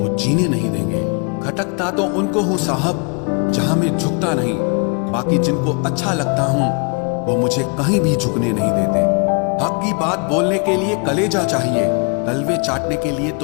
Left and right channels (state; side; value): quieter; right; 36.1 dB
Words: जीने नहीं देंगे। खटकता तो उनको हूँ साहब जहां मैं झुकता नहीं, बाकी जिनको अच्छा लगता हूँ वो मुझे कहीं भी झुकने नहीं देते। हक की बात बोलने के लिए कलेजा चाहिए, तलवे चाटने के लिए